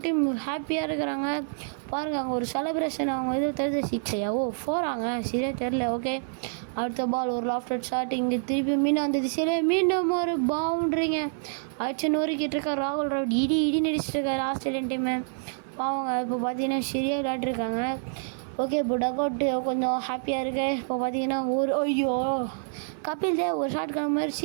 டீம் ஹாப்பியாக இருக்கிறாங்க பாருங்கள். அங்கே ஒரு செலிப்ரேஷன் அவங்க இது தெரிஞ்ச 6 ஓ 4 சரியாக தெரில. ஓகே, அடுத்த பால் ஒரு லாஃப்டட் ஷாட். இங்கே திருப்பி மீண்டும் அந்த திசையிலே மீண்டும் ஒரு பவுண்ட்ரிங்க அடிச்சு நொறுக்கிட்டு இருக்கார் ராகுல் டிராவிட். இடி நடிச்சிட்டு இருக்காரு ஆஸ்திரேலியன் டீமு பாவங்க. இப்போ பார்த்தீங்கன்னா சரியாக விளையாட்டுருக்காங்க. ஓகே, இப்போ டக் அவுட்டு கொஞ்சம் ஹாப்பியாக இருக்கு. இப்போ பார்த்தீங்கன்னா ஒரு ஐயோ கபில் தேவ் ஒரு ஷாட்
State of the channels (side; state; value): left; silent; 60 dB below the other